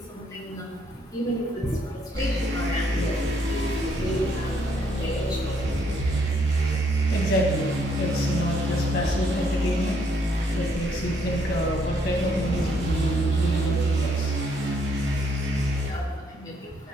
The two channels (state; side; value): normal; both; correlation 0.70